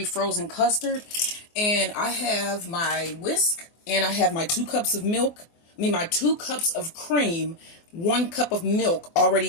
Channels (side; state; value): right; late; 24 ms